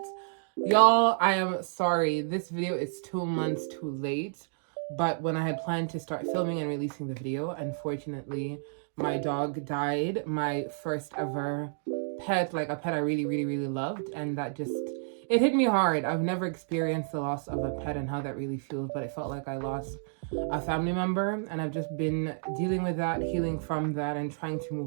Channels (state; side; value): silent; left; digital silence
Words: Y'all, I am sorry. This video is 2 months too late, but when I had planned to start filming and releasing the video, unfortunately, my dog died. My first ever pet, like a pet I really loved, and that just, it hit me hard. I've never experienced the loss of a pet and how that really feels, but it felt like I lost a family member, and I've just been dealing with that, healing from that, and trying to